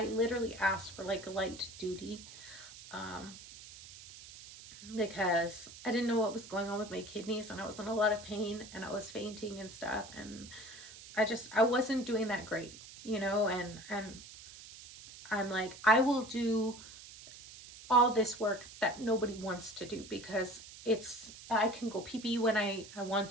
literally asked for like light duty, um, because I didn't know what was going on with my kidneys, and I was in a lot of pain, and I was fainting and stuff, and I wasn't doing that great, and I'm like, I will do all this work that nobody wants to do, because I can go pee pee when I want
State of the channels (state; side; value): noise; right; hiss, 16 dB below the sound